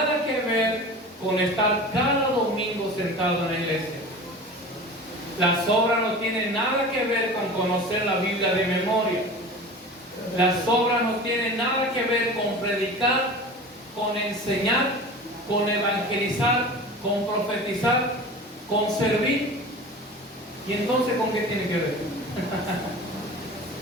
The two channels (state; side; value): normal; both; correlation 0.36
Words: que ver con estar cada domingo sentado en la iglesia. Las obras no tienen nada que ver con conocer la Biblia de memoria. Las obras no tienen nada que ver con predicar, con enseñar, con evangelizar, con profetizar, con servir. ¿Y entonces con qué tiene que ver?